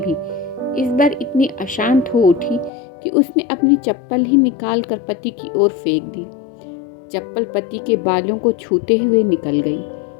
इस बार इतनी अशांत हो उठी कि उसने अपनी चप्पल ही निकाल कर पति की ओर फेंक दी। चप्पल पति के बालों को छूते हुए निकल गई।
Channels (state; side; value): drops out; right; at 2.7 s